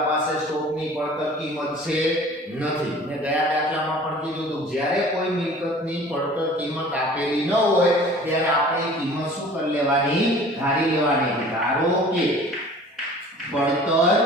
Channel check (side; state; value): both; normal; correlation 0.46